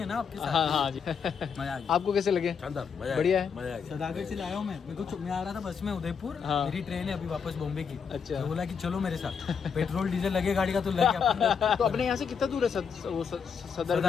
ना आपके साथ। हाँ जी। मजा आ गया। आपको कैसे लगे? शानदार, बढ़िया है। मजा आ गया। सदागढ़ से लाया हूँ मैं आ रहा था बस में उदयपुर। हाँ। मेरी ट्रेन है अभी वापस बॉम्बे की। अच्छा। तो बोला कि चलो मेरे साथ, पेट्रोल डीजल लगे गाड़ी का तो लगे। तो अपने यहाँ से कितना दूर है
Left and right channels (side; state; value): right; quieter; 6.5 dB